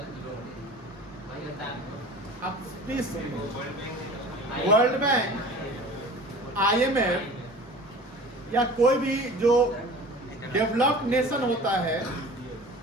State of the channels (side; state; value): both; normal; correlation 0.41